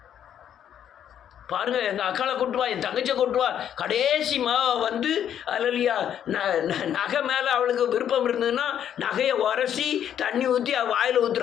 பாருங்க, எங்கள் அக்காளை கொட்டுவா, என் தங்கச்சியை கொட்டுவா, கடைசி வந்து அல்லேலூயா நகை மேலே அவளுக்கு விருப்பம் இருந்ததுன்னா நகையை உரசி தண்ணி ஊற்றி அவள் வாயில்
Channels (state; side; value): quieter; right; 9.7 dB